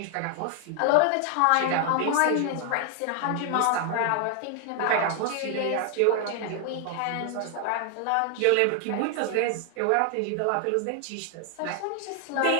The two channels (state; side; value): different; both; correlation 0.00